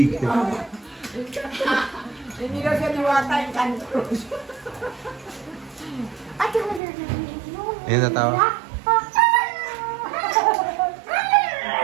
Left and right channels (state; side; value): drops out; left; at 6.8 s